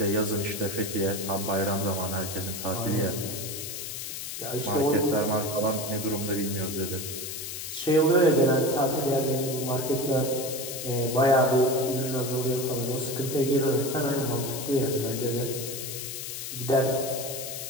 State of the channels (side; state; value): left; noise; hiss, 7 dB below the sound